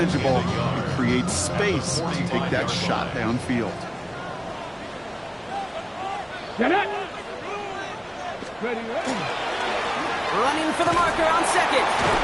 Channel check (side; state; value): both; identical; correlation 1.00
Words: and creates space to take that shot downfield. Get it. Ready. Running for the marker on second.